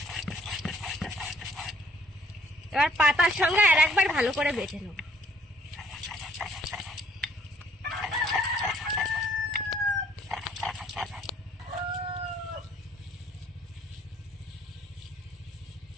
এবার পাতার সঙ্গে আর একবার ভালো করে বেটে নেব।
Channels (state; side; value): normal; both; correlation 0.63